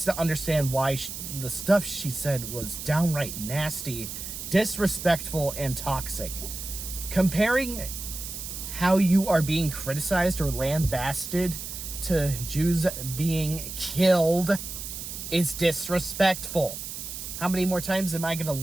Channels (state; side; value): noise; right; hiss, 8 dB below the sound